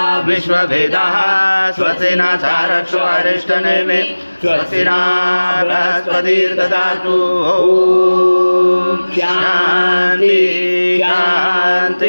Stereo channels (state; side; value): inverted; both; correlation -1.00